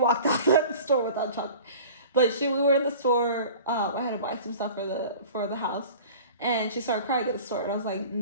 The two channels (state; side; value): inverted; both; correlation -0.42